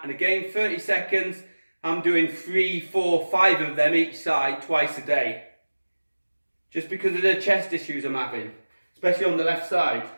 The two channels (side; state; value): both; inverted; correlation -1.00